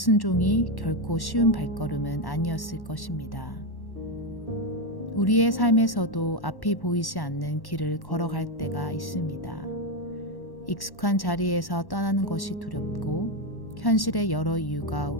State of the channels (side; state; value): right; late; 1.1 ms